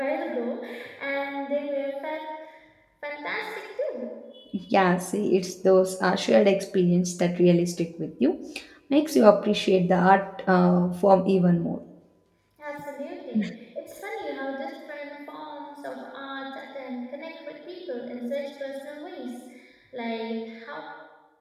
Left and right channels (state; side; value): identical; both; correlation 1.00